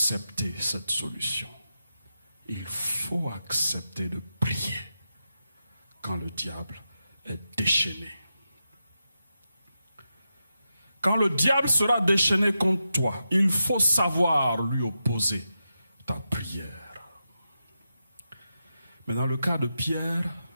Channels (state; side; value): inverted; both; correlation -0.89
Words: cette solution. Il faut accepter de prier quand le diable est déchaîné. Quand le diable sera déchaîné contre toi, il faut savoir lui opposer ta prière. Mais dans le cas de Pierre,